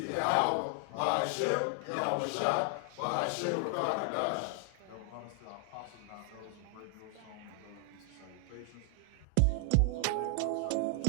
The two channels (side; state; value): both; different; correlation 0.00